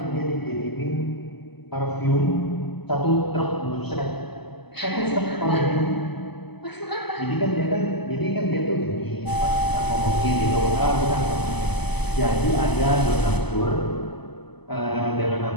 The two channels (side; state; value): right; late; 0.99 ms